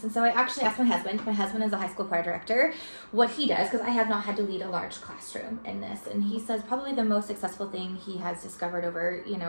And so I actually asked my husband is a high school choir director, what he does, because I have not had to lead a large classroom in this. And he says probably the most successful thing he has discovered over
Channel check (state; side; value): inverted; both; correlation -1.00